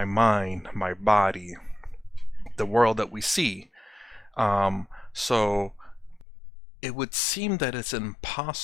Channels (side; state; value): right; drops out; at 6.2 s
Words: mind, my body, the world that we see. So it would seem that it's